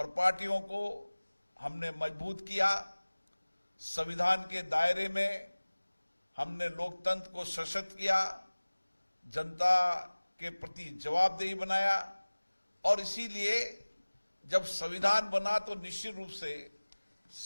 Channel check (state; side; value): inverted; both; correlation -1.00